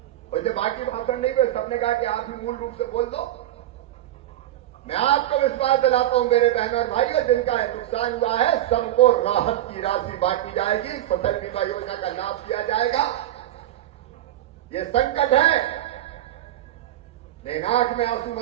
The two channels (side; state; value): left; quieter; 13.5 dB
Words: वैसे बाकी भाषण नहीं हुए, सबने कहा कि आप ही मूल रूप से बोल दो। मैं आपको विश्वास दिलाता हूं मेरे बहन और भाइयों, जिनका नुकसान हुआ है सबको राहत की राशि बांटी जाएगी, फसल बीमा योजना का लाभ दिया जाएगा। ये संकट है, लेकिन आंख में आंसू